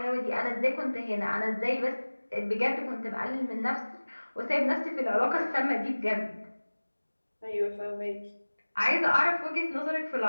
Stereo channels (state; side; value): inverted; both; correlation -1.00